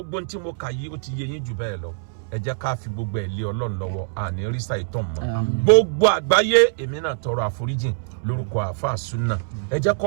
tí mo kà yìí ó ti yé yín jù bẹ́ẹ̀ lọ ẹ jẹ́ ká fi gbogbo ẹ̀ lé Ọlọ́run lọ́wọ́ àní rísà ìtàn mọ́ gbogbo àgbáyé èmi náà tọrọ àforíjìn lórúkọ àáfàá súnà ẹ jẹ́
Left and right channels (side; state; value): left; silent; 63 dB below the other